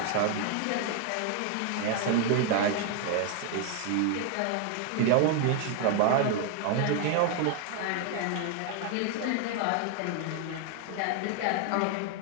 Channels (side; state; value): both; different; correlation 0.00